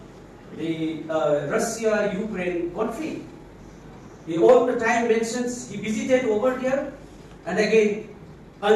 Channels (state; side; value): identical; both; correlation 1.00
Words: the Russia-Ukraine conflict. He all the time mentions he visited over here and again